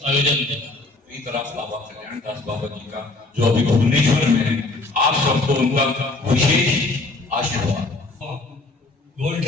आयोजन में। तरफ बाबा कल्याण दास बाबा जी का जो अभी भुवनेश्वर में है, आप सबको उनका विशेष आशीर्वाद। Gold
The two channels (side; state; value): right; quieter; 3.3 dB